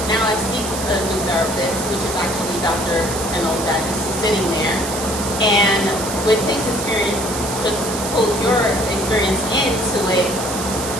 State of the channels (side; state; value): right; noise; hiss, 6 dB below the sound